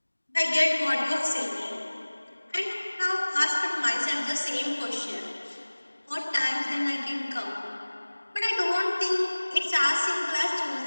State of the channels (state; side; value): inverted; both; correlation -1.00